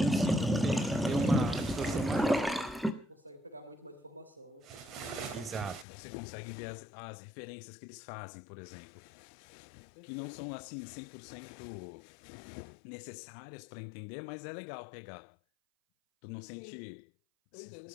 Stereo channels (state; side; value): drops out; right; at 5.9 s